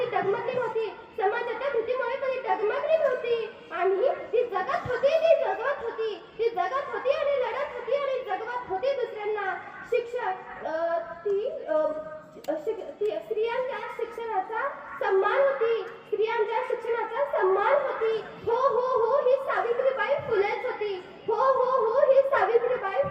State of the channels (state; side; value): identical; both; correlation 1.00